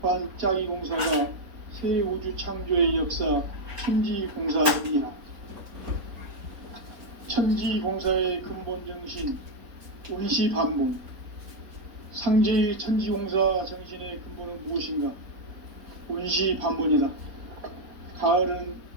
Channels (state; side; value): late; left; 3.9 ms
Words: 짜기 공사가 새 우주 창조의 역사 천지공사이니라. 천지공사의 근본 정신 원시반복. 상제의 천지공사 정신의 근본은 무엇인가? 원시반복이다. 가을은